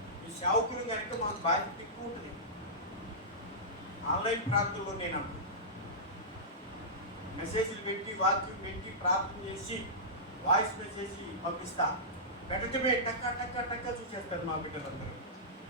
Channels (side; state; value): both; normal; correlation -0.16